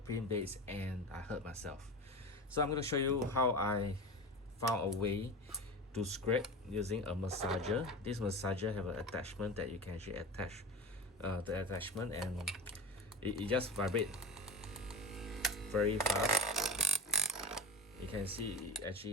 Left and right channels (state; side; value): normal; both; correlation 0.27